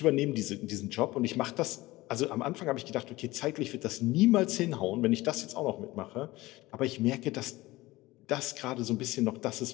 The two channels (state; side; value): quieter; right; 19.3 dB